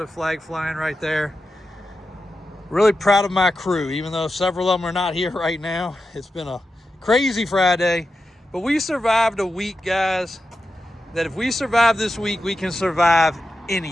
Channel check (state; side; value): normal; both; correlation 0.90